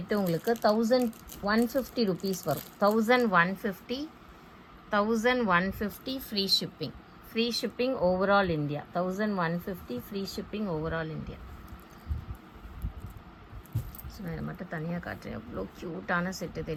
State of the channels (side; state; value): both; identical; correlation 1.00